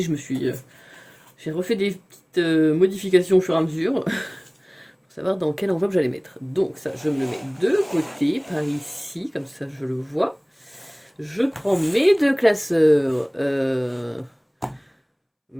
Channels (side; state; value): both; identical; correlation 1.00